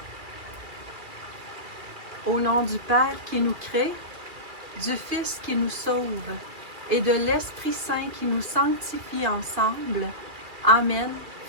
Au nom du Père qui nous crée, du Fils qui nous sauve et de l'Esprit Saint qui nous sanctifie ensemble. Amen,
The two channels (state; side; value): late; left; 2.1 ms